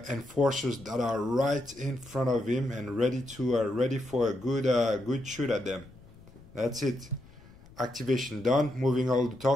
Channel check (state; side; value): noise; left; rumble, 22 dB below the sound